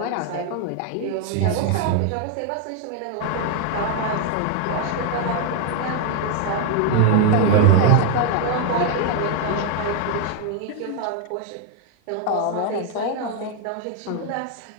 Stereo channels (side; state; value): both; different; correlation 0.01